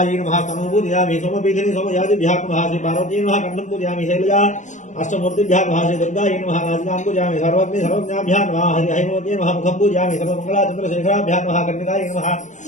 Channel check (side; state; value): right; late; 0.35 ms